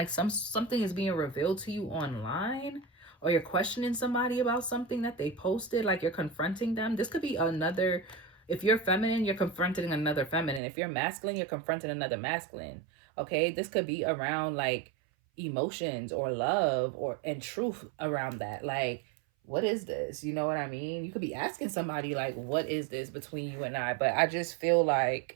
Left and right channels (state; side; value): drops out; left; at 10.6 s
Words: something is being revealed to you online, or you're questioning somebody about something that they posted, like you're confronting them. This could be another. If you're feminine, you're confronting another feminine. If you're masculine, you're confronting another masculine. Okay, this could be around like emotions or love and truth around that. Like, what is this? You know what I mean? You could be asking somebody like, what is this between you and I? But I just feel